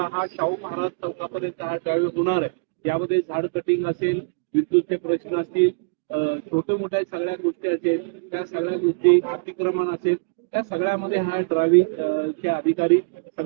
हा शाहू महाराज चौकापर्यंत हा ड्रायव्हिंग होणार आहे. यामध्ये झाड कटिंग असेल, विद्युतचे प्रश्न असतील, छोटे मोठ्या सगळ्या गोष्टी असेल, त्या सगळ्या गोष्टी अतिक्रमण असेल, त्या सगळ्यामध्ये हा ड्रायव्हिंग चे अधिकारी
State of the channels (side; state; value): left; quieter; 35.8 dB